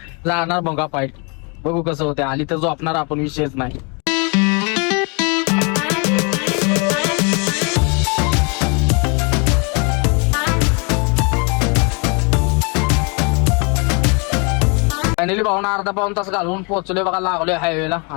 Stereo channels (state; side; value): quieter; right; 33.4 dB